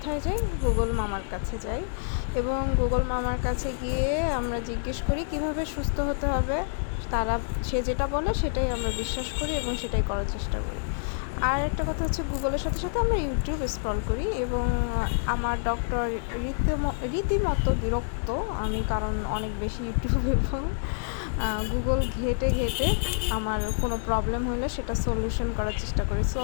যাই? গুগল মামার কাছে যাই এবং গুগল মামার কাছে গিয়ে আমরা জিজ্ঞেস করি কিভাবে সুস্থ হতে হবে। সে যেটা বলে সেটাই আমরা বিশ্বাস করি এবং সেটাই করার চেষ্টা করি। আর একটা কথা হচ্ছে, গুগলের সাথে সাথে আমরা ইউটিউব স্ক্রল করি এবং আমার ডক্টর রীতিমতো বিরক্ত আমি, কারণ অনেক বেশি ইউটিউব এবং গুগল ঘেটে ঘেটে আমার কোনো প্রবলেম হলে সেটা সলিউশন করার চেষ্টা করি। সো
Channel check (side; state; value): right; silent; digital silence